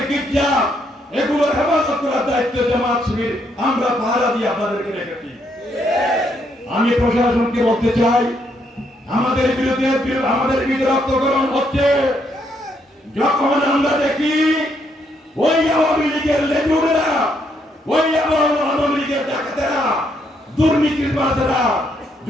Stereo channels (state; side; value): normal; both; correlation 0.74